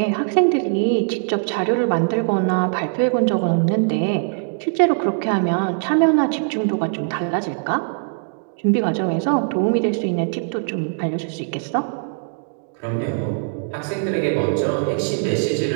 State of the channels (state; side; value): silent; left; digital silence